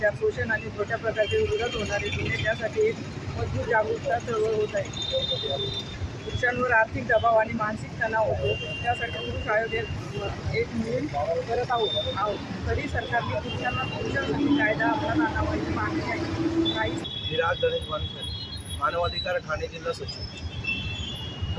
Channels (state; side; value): identical; both; correlation 1.00